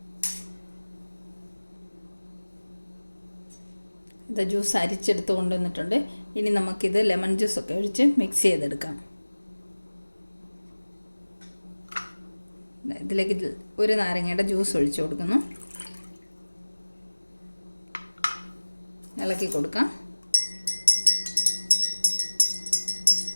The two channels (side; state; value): both; inverted; correlation -1.00